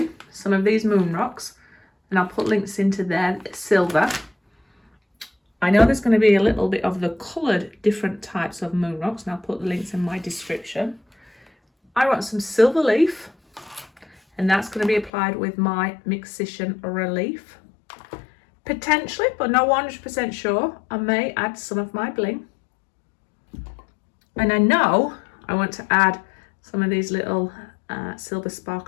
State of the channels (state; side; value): drops out; right; at 15.1 s